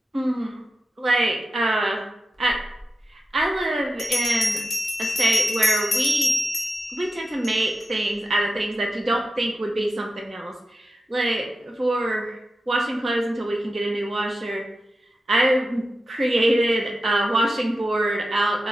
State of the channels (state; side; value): normal; both; correlation 0.91